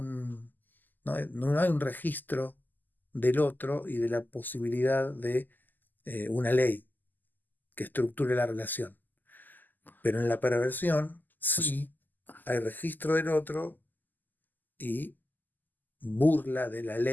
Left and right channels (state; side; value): late; right; 0.087 ms